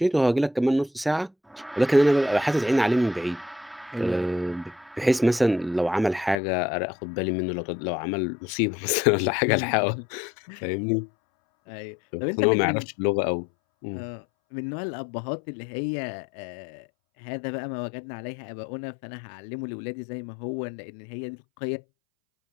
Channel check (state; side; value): drops out; right; at 6.4 s